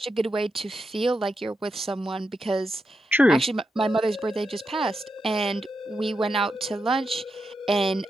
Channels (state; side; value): normal; both; correlation 0.86